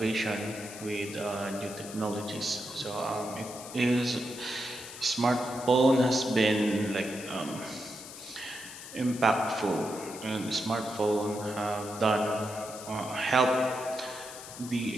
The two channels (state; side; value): noise; left; hiss, 13 dB below the sound